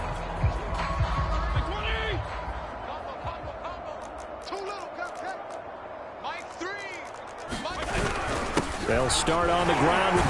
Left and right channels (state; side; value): identical; both; correlation 1.00